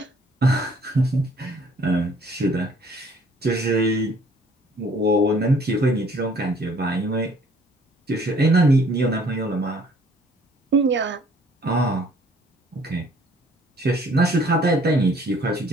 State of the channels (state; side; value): normal; both; correlation 0.58